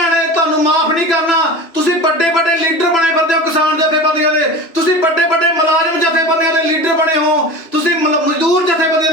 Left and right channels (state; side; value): late; right; 3.0 ms